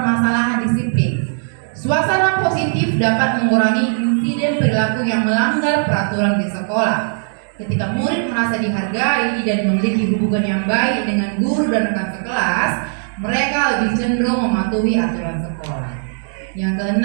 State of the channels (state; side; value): silent; left; digital silence